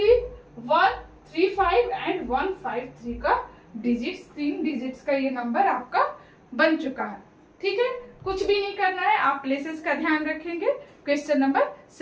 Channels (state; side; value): identical; both; correlation 1.00